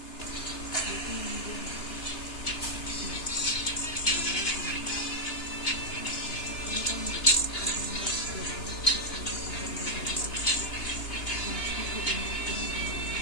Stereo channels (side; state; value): right; late; 2.9 ms